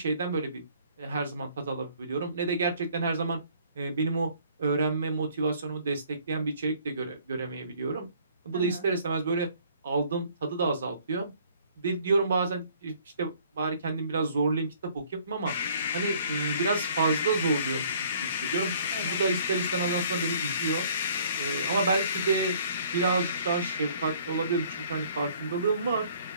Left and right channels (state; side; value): inverted; both; correlation -0.58